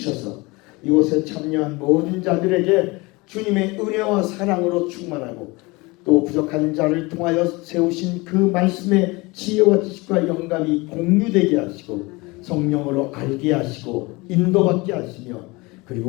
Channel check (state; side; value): quieter; right; 24.2 dB